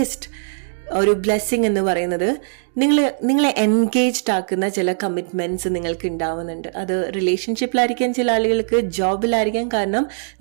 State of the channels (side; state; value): left; silent; digital silence